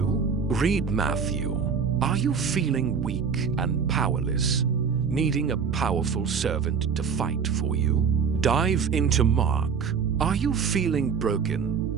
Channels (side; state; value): left; quieter; 6.3 dB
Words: Read Matthew. Are you feeling weak and powerless, needing a powerful servant to fight for you? Dive into Mark. Are you feeling